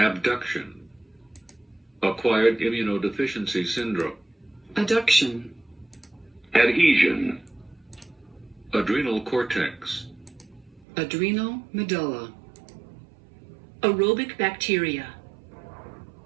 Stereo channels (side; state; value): left; drops out; at 10.9 s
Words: Acquired immunodeficiency syndrome. Adduction. Adhesion. Adrenal cortex. Adrenal medulla. Aerobic bacteria.